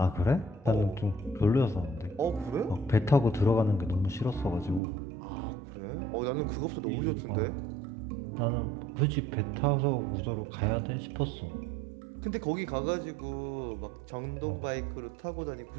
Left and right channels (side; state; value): left; drops out; at 4.8 s